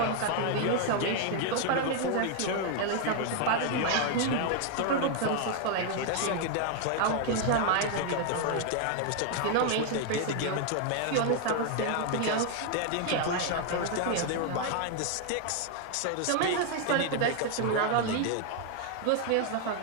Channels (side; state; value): both; different; correlation 0.00